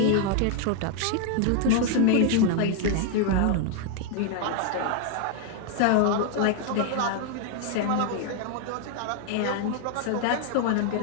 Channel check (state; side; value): different; both; correlation 0.00